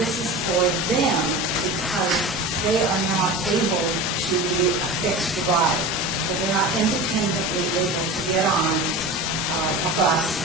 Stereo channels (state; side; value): normal; both; correlation 0.31